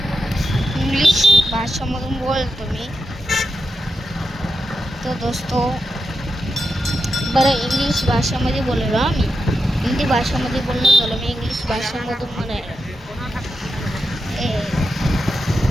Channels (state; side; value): normal; both; correlation 0.88